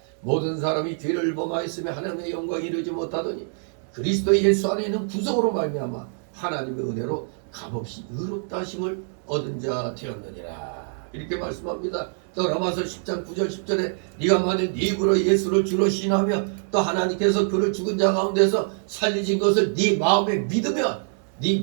모든 사람이 죄를 범하였으며 하나님의 영광에 이르지 못하더니 그리스도 예수 안에 있는 구속으로 말미암아 하나님의 은혜로 값없이 의롭다 하심을 얻은 자 되었느니라. 이렇게 말씀합니다. 또 로마서 10장 9절 10절에 네가 만일 네 입으로 예수를 주로 신하며 또 하나님께서 그를 죽은 자 가운데서 살리신 것을 네 마음에 믿으면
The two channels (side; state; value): left; silent; digital silence